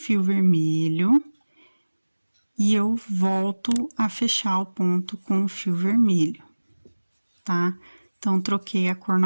vermelho e eu volto a fechar o ponto com o fio vermelho, tá? Então, troquei a cor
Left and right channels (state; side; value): inverted; both; correlation -1.00